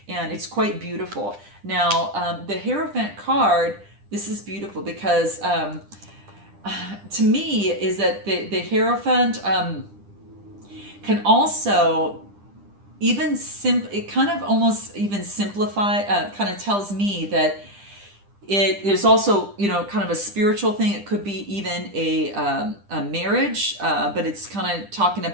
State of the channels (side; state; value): left; late; 10 ms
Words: And it's quite beautiful. Now, the Hierophant card, this is beautiful because to me is that the Hierophant can also it kind of almost even simplify, kind of tells me that there's also, kind of a spiritual thing. It could be even a marriage, but it's kind of talking